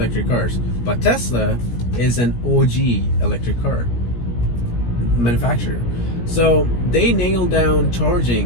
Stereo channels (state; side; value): late; right; 17 ms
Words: cars, but Tesla is an OG electric car manufacturer. So they nailed down